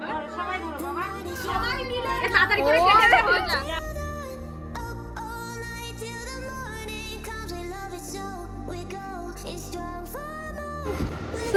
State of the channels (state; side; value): identical; both; correlation 1.00